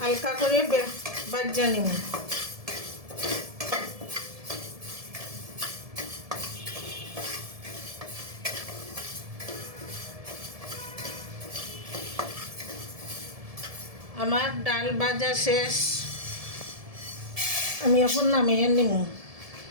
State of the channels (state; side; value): late; left; 1.7 ms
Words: করে ভাজা নিব। আমার ডাল ভাজা শেষ, আমি এখন নামিয়ে নিব।